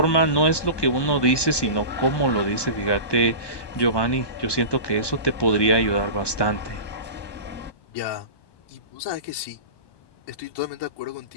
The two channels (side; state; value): right; late; 1.2 ms